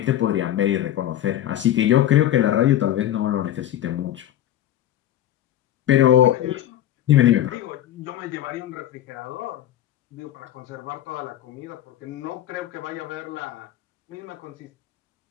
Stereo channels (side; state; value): right; quieter; 12.2 dB